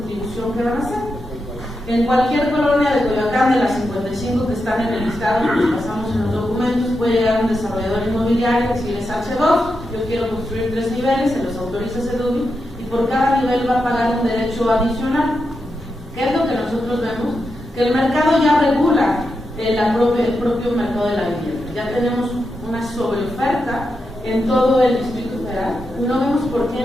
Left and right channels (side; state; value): both; normal; correlation 0.87